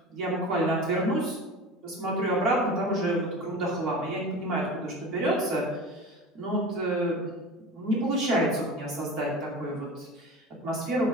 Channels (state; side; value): normal; both; correlation 0.33